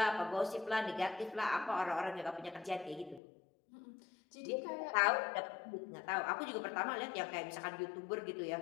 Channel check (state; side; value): drops out; right; at 3.2 s